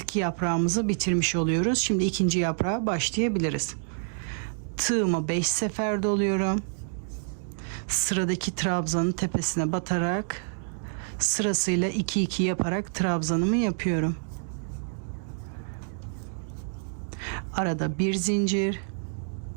yaprağımızı bitirmiş oluyoruz. Şimdi ikinci yaprağa başlayabiliriz. Tığıma 5 sefer doluyorum. Sıradaki trabzanın tepesine batarak sırasıyla 2-2 yaparak trabzanımı yapıyorum. Arada bir zincir,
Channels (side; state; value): left; silent; digital silence